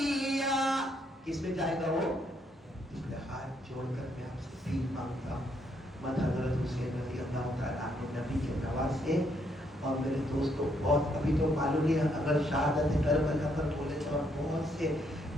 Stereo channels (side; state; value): both; normal; correlation 0.73